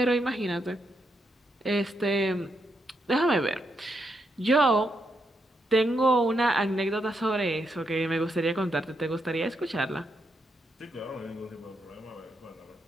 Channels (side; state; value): both; normal; correlation 0.81